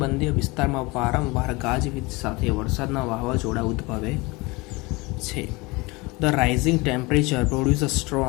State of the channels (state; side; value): quieter; right; 24.5 dB